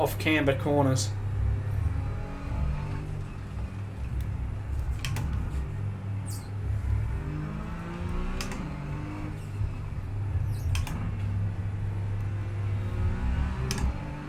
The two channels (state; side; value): identical; both; correlation 1.00